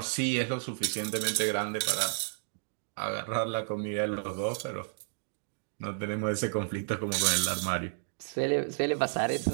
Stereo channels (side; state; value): left; silent; digital silence